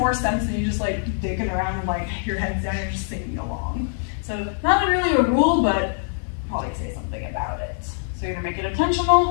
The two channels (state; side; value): silent; right; 56 dB below the other